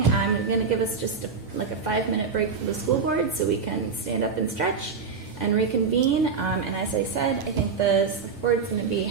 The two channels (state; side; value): quieter; left; 5.3 dB